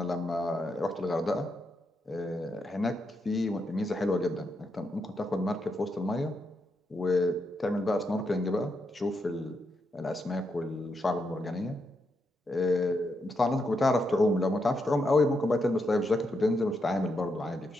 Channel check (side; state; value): both; normal; correlation 0.82